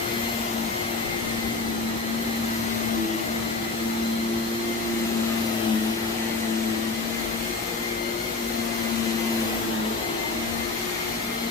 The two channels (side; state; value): right; quieter; 3.8 dB